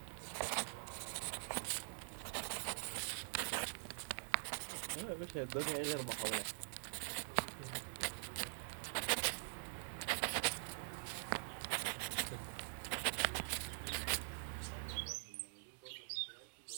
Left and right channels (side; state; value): left; silent; digital silence